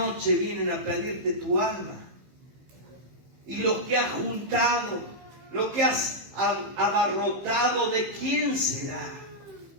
vienen a pedirte tu alma. Y lo que has juntado, lo que has abarrotado, ¿de quién será?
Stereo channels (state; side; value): late; left; 15 ms